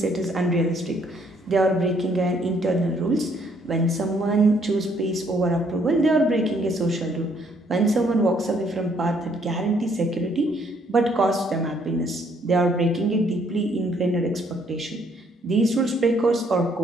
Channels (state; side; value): normal; both; correlation 0.67